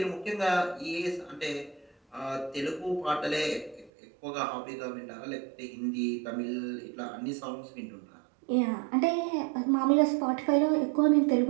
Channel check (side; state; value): left; drops out; at 3.9 s